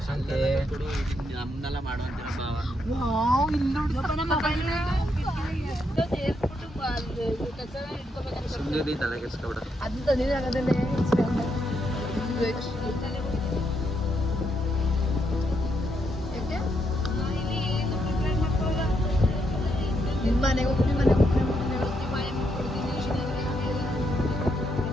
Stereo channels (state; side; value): normal; both; correlation 0.79